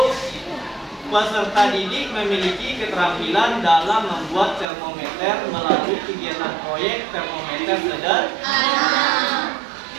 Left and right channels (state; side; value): drops out; left; at 4.7 s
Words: peserta didik memiliki keterampilan dalam membuat termometer melalui kegiatan proyek termometer sederhana.